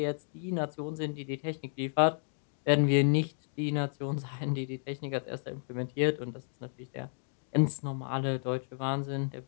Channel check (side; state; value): right; silent; digital silence